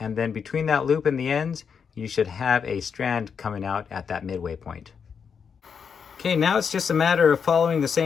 then between that loop and the ends, you should have a strand coming out at that midway point. Okay, now it's just a matter of following the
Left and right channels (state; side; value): quieter; right; 6.5 dB